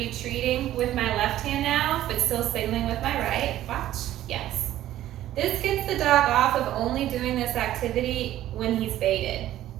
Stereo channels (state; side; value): quieter; left; 13.4 dB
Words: treating with my left hand now, but still signaling with my right. Watch. Yes. This gets the dog off of only doing this activity when he's baited.